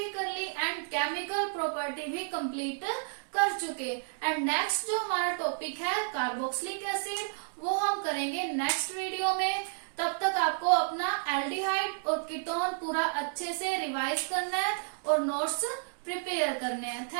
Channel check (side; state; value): left; silent; digital silence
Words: कर ली एंड केमिकल प्रॉपर्टी भी कंप्लीट कर चुके। एंड नेक्स्ट जो हमारा टॉपिक है कार्बोक्सिलिक एसिड, वो हम करेंगे नेक्स्ट वीडियो में। तब तक आपको अपना एल्डिहाइड और कीटोन पूरा अच्छे से रिवाइज करना है और नोट्स प्रिपेयर करने हैं।